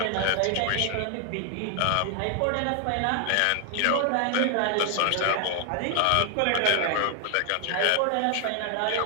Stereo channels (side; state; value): both; different; correlation 0.00